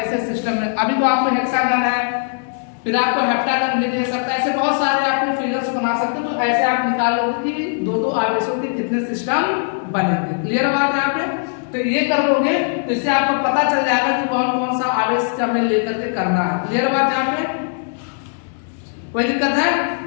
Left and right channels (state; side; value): silent; right; digital silence